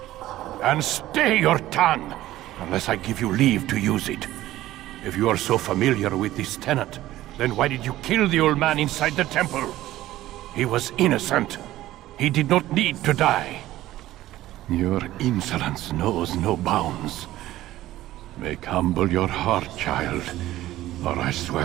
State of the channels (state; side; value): quieter; left; 15.1 dB